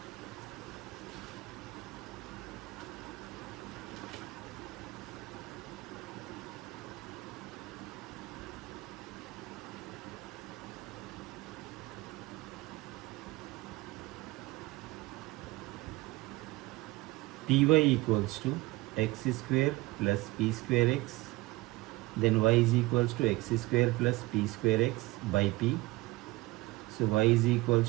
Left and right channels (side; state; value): left; quieter; 20.4 dB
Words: Py equals to x square plus p square x, then y is equals to x square plus p square x by p. So y is